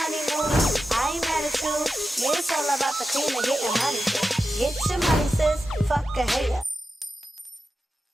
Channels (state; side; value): normal; both; correlation 0.91